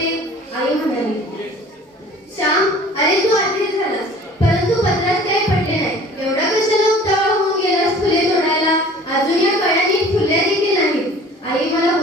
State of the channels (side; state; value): both; normal; correlation 0.47